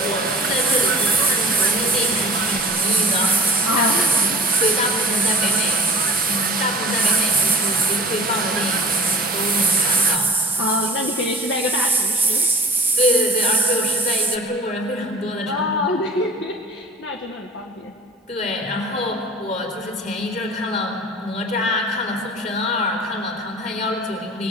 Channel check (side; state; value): both; normal; correlation 0.44